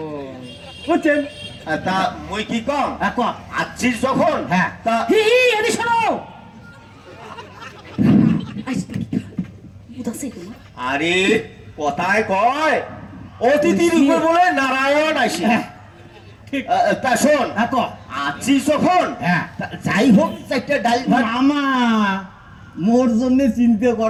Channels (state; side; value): identical; both; correlation 1.00